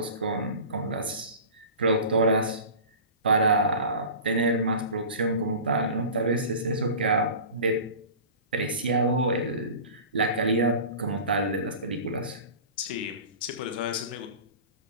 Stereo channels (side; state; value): both; inverted; correlation -0.37